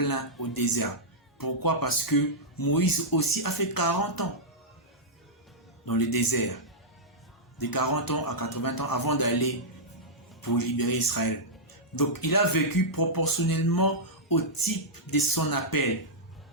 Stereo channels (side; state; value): both; normal; correlation -0.09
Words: au désert. Pourquoi? Parce que Moïse aussi a fait 40 ans dans le désert. De 40 ans à 80 ans avant d'aller pour libérer Israël. Donc il a vécu proportionnellement au type de son appel.